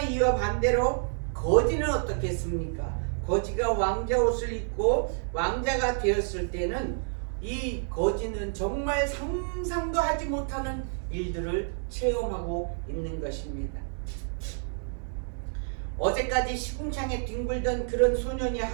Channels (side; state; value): left; silent; 58 dB below the other